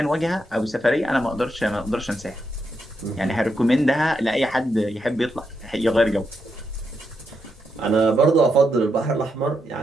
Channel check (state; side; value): normal; both; correlation 0.82